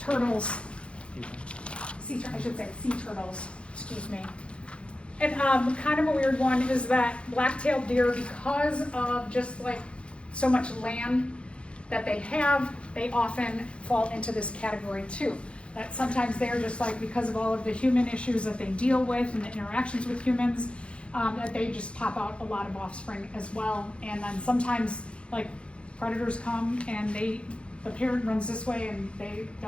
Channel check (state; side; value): late; right; 0.059 ms